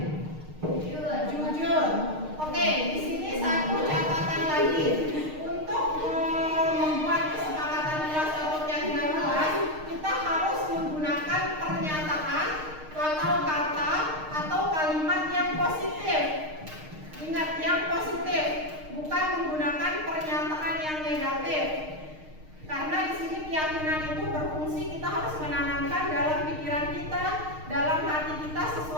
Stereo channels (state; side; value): late; left; 6.5 ms